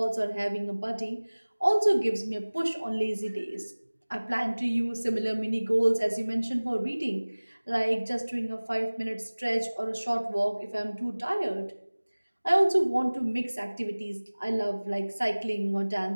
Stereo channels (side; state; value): both; inverted; correlation -1.00